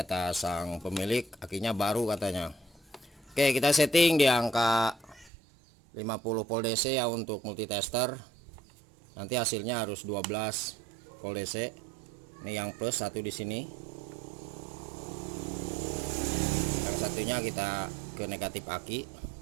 sang pemilik akinya baru katanya. Oke, kita setting di angka 50 volt DC ya untuk multitester. Nanti hasilnya harus 12 volt DC. Ini yang plus satu di sini. Yang satunya kita ke negatif aki.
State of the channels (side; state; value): left; drops out; at 5.3 s